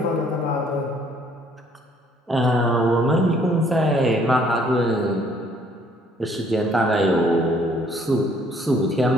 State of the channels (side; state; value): both; normal; correlation 0.62